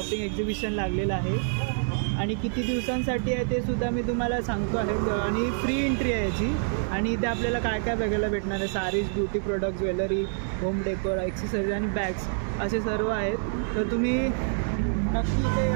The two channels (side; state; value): left; silent; 60 dB below the other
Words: एक्झिबिशन लागलेलं आहे आणि किती दिवसांसाठी आहे ते सुद्धा मी तुम्हाला सांगतो आहे. आणि फ्री एंट्री आहे याची. आणि इथे आपल्याला काय काय बघायला भेटणार आहे, saris, beauty product, jewellery, home decor, accessories आणि बॅग्स असे सर्व आहेत. तर तुम्ही नक्की इथे